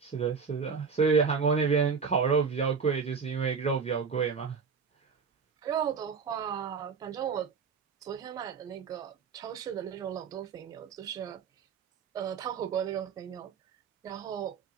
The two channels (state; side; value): quieter; left; 5.7 dB